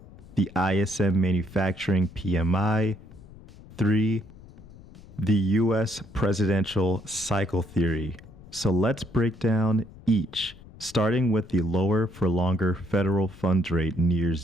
The ISM Manufacturing PMI. 3. The U.S. presidential cycle theory. So let's break down each, starting with the lower for longer federal funds rate near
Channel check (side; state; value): left; noise; rumble, 20 dB below the sound